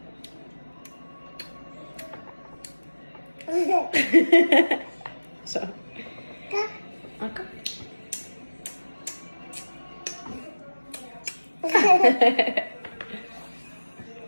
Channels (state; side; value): inverted; both; correlation -1.00